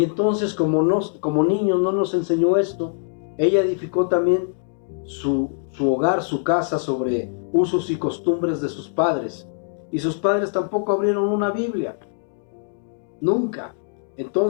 entonces como niños no nos enseñó esto. Ella edificó también su hogar, su casa sobre usos y costumbres de sus padres. Y sus padres tampoco abrieron una Biblia. Nunca.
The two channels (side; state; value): right; silent; 64 dB below the other